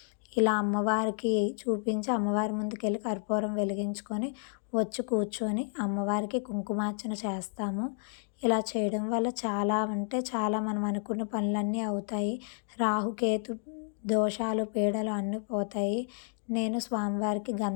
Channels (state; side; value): silent; right; 56 dB below the other